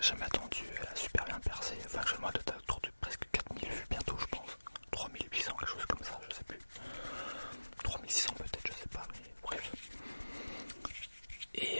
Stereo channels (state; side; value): inverted; both; correlation -1.00